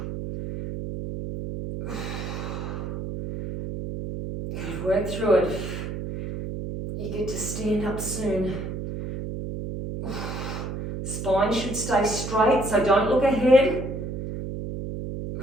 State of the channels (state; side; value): noise; right; hum, 6 dB below the sound